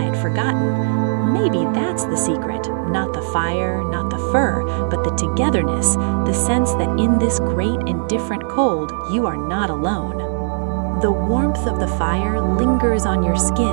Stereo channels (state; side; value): silent; left; digital silence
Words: forgotten. Maybe that's the secret, not the fire, not the fur, but the togetherness, the sense that in this great and different cold, you are not alone. The warmth of the fire lingers on your